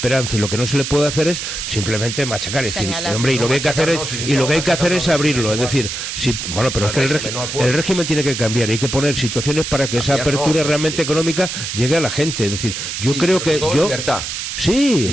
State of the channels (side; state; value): right; noise; hiss, 5 dB below the sound